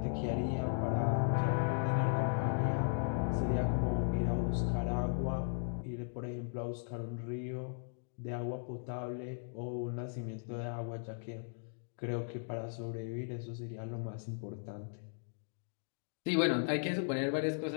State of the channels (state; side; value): silent; right; digital silence